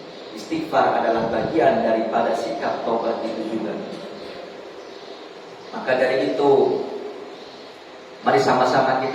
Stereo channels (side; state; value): both; identical; correlation 1.00